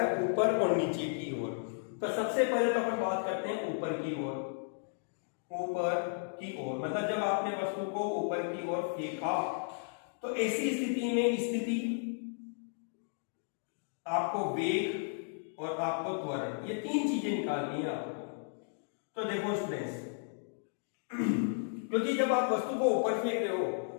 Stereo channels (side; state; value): right; silent; digital silence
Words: है ऊपर और नीचे की ओर। तो सबसे पहले तो अपन बात करते हैं ऊपर की ओर। ऊपर की ओर मतलब जब आपने वस्तु को ऊपर की ओर फेंका तो ऐसी स्थिति में स्थिति आपको वेग और आपको त्वरण, ये तीन चीजें निकालनी है आपको। तो देखो स्टूडेंट्स, क्योंकि जब आप वस्तु को ऊपर फेंक रहे हो